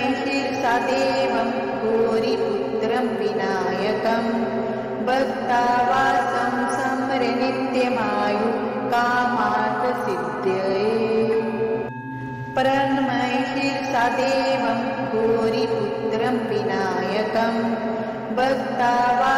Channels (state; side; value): identical; both; correlation 1.00